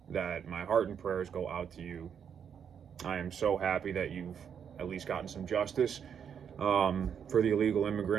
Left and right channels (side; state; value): left; quieter; 7.8 dB